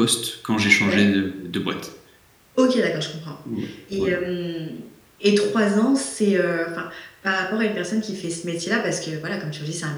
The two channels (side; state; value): both; identical; correlation 1.00